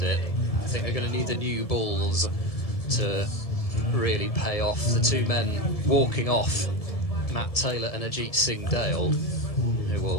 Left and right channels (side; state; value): right; late; 1.6 ms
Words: it. I think they're going to need the new balls to really pay off. The two men walking off, Matt Taylor and Ajit Singh Dale, who